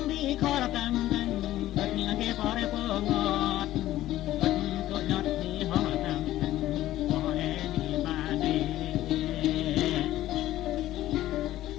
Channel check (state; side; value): quieter; right; 14.5 dB